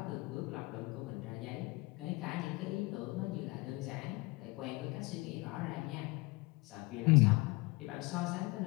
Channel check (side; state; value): right; quieter; 24.8 dB